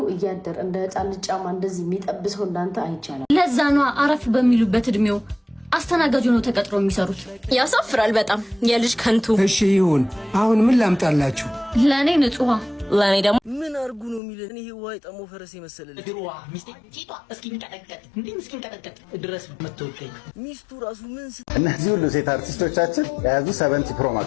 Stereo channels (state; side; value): drops out; right; at 14.2 s